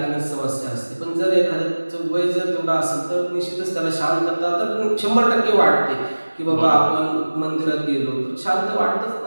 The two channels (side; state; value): both; inverted; correlation -1.00